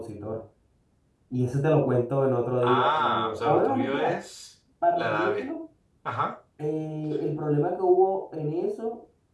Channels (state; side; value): identical; both; correlation 1.00